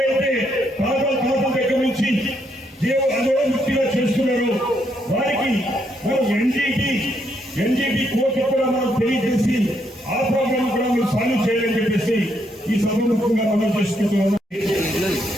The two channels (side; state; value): both; normal; correlation 0.75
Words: తాతల దగ్గర నుంచి అదోముక్తిగా చేస్తున్నారో వారికి మనం ఎన్జీటీ కోర్టు కూడా మనం తెలియజేసి ఆ ప్రోగ్రామ్ కూడా మనం సాల్వ్ చేయాలని చెప్పేసి ఈ సభముఖంగా మనం చేసుకుంటున్నాం.